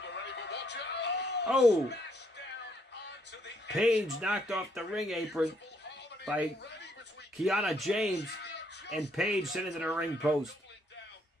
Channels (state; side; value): normal; both; correlation 0.71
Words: already, but watch out. Oh, Smash down onto the Paige knocked off the ring apron by Kiana James, and Paige sent it to the ring post. face